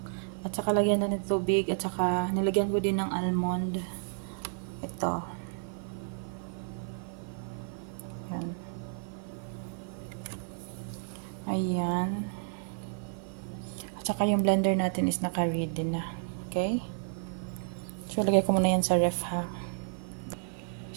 at saka lagyan na ng tubig, at saka nilagyan ko din ng almond. Ito. Yan. Ayan. At saka yung blender natin is naka-ready na. Okay? So, lagay ko muna yan sa ref ha.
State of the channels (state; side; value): silent; left; digital silence